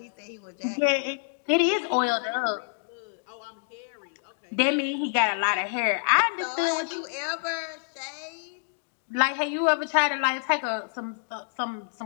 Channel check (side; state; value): right; silent; digital silence